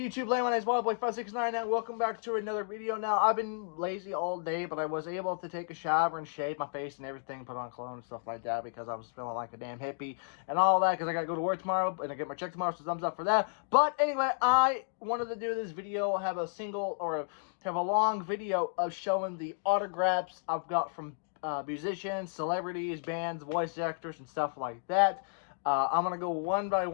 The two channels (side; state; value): right; silent; digital silence